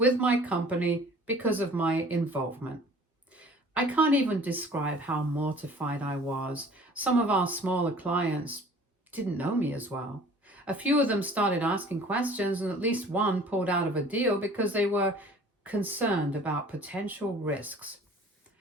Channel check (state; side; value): normal; both; correlation 0.49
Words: my company because of my involvement. I can't even describe how mortified I was. Some of our smaller clients didn't know me as well. A few of them started asking questions, and at least one pulled out of a deal because they were concerned about potential risks.